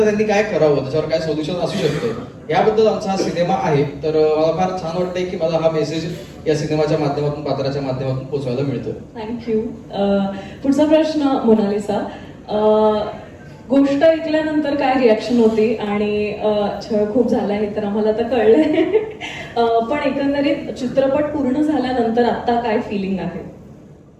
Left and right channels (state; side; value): identical; both; correlation 1.00